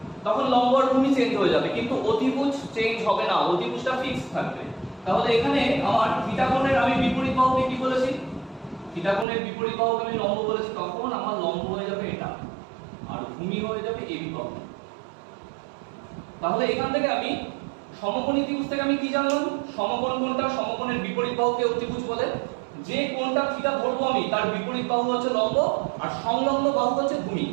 তখন লম্ব আর ভূমি চেঞ্জ হয়ে যাবে, কিন্তু অতিভুজ চেঞ্জ হবে না, অতিভুজটা ফিক্স থাকবে। তাহলে এখানে আমার থিটা কোণের আমি বিপরীত বাহুকে কি বলেছি? থিটা কোণের বিপরীত বাহুকে আমি লম্ব বলেছি, তখন আমার লম্ব হয়ে যাবে এটা আর ভূমি হয়ে যাবে এবি বাহু। তাহলে এখান থেকে আমি সমকোণী ত্রিভুজ থেকে আমি কি জানলাম? সমকোণ কোণটা, সমকোণের বিপরীত বাহুকে অতিভুজ বলে। যে কোণটা থিটা ধরবো আমি, তার বিপরীত বাহু হচ্ছে লম্ব আর সংলগ্ন বাহু হচ্ছে ভূমি।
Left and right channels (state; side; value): drops out; left; at 9.2 s